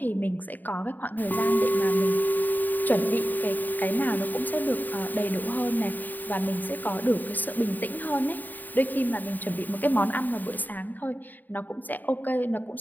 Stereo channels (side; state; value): right; late; 0.088 ms